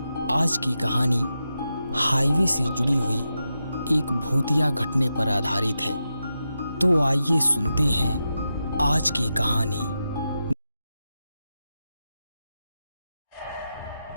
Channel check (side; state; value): both; inverted; correlation -0.89